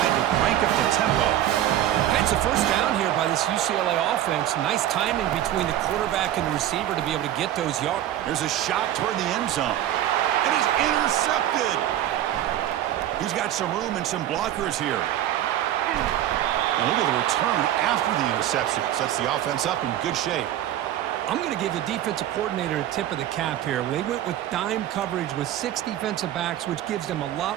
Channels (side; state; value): left; quieter; 12.2 dB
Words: to crank up the tempo. It's a first down here by this UCLA offense. Nice timing between the quarterback and the receiver to be able to get those yards. There's a shot toward the end zone. And he's intercepted. He's got some room and some blockers here. And look at the return after the interception. Sets the offense up in good shape. I'm going to give the defensive coordinator a tip of the cap here. They went with dime coverage with 6 defensive backs, which gives them a lot